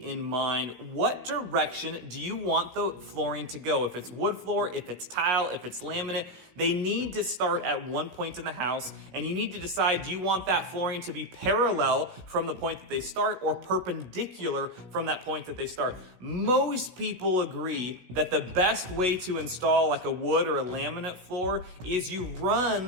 in mind. What direction do you want the flooring to go? If it's wood floor, if it's tile, if it's laminate, they need to start at one point in the house, and you need to decide, do you want that flooring to be parallel from the point that they start or perpendicular from that point that they start? Most people agree that the best way to install like a wood or a laminate floor is you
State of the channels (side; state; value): left; late; 17 ms